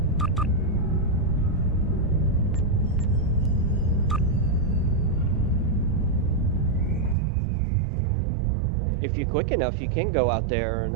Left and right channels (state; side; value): drops out; left; at 7.2 s